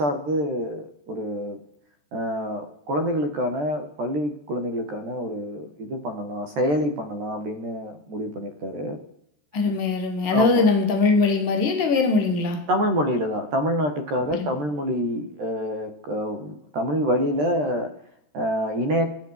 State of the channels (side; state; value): left; late; 14 ms